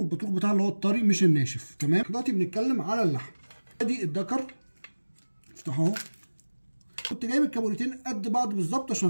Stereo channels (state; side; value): inverted; both; correlation -1.00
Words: بتاعها اللي هو الطري مش الناشف. تمام، دلوقتي بنتكلم على اللحم. ادي الذكر افتحه اهو. كنت جايب الكابوريتين قد بعض بالظبط